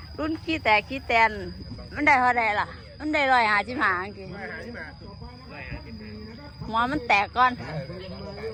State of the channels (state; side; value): identical; both; correlation 1.00